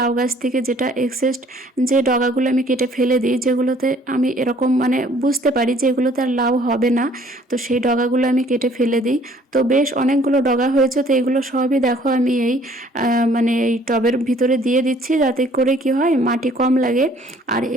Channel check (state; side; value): normal; both; correlation 0.58